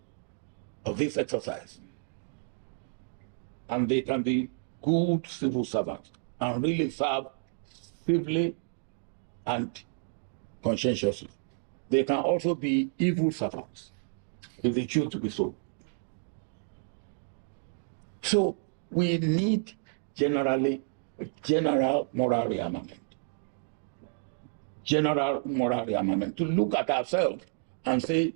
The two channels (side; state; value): left; silent; digital silence